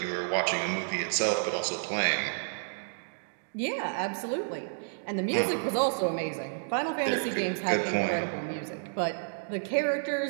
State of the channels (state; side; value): silent; left; digital silence